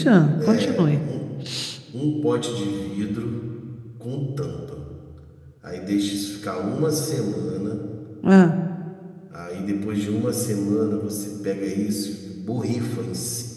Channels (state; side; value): identical; both; correlation 1.00